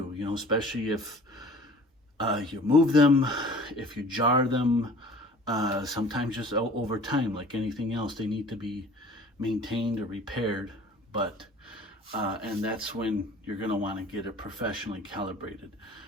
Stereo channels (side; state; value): both; normal; correlation 0.47